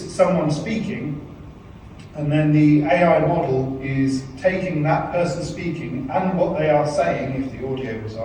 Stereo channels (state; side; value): identical; both; correlation 1.00